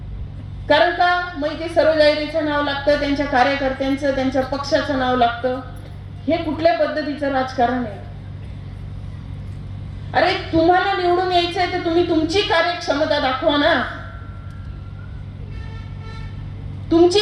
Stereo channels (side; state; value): both; identical; correlation 1.00